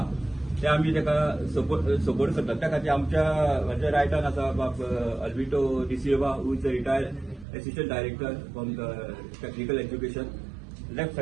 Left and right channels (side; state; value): left; drops out; at 7.5 s